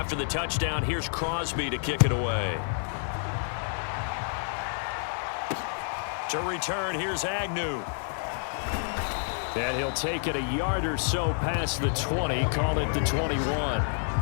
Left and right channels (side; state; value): right; silent; digital silence